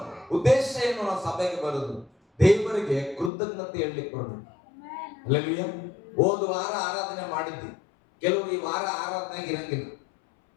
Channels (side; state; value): right; drops out; at 3.3 s